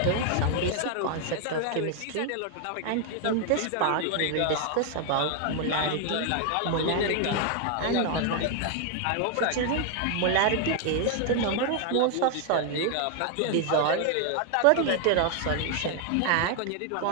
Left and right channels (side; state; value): both; different; correlation 0.00